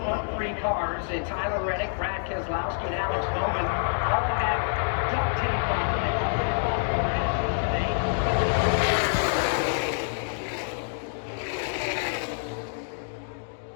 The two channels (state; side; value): silent; right; digital silence